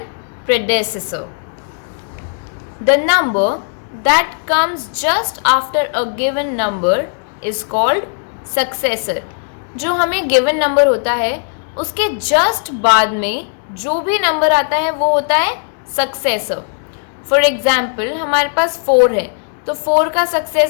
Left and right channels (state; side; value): silent; right; digital silence